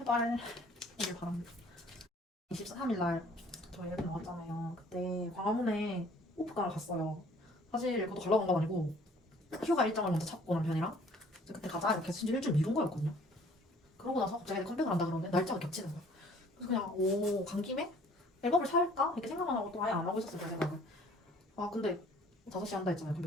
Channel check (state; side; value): normal; both; correlation 0.55